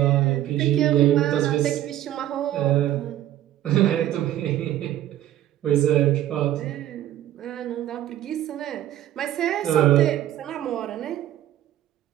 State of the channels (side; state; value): left; quieter; 12.9 dB